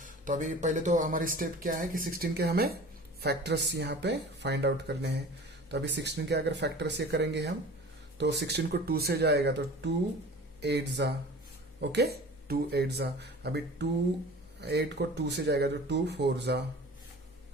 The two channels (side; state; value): both; normal; correlation 0.40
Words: तो अभी पहले तो हमारी स्टेप क्या है कि 16 के हमें फैक्टर्स यहाँ पे फाइंड आउट करने हैं. तो अभी 16 के अगर फैक्टर्स ये करेंगे हम तो 16 को 2 से जाएगा तो 2 8 जा. ओके, 2 8 जा. अभी 8 को 2 से जाएगा तो 2 4 जा.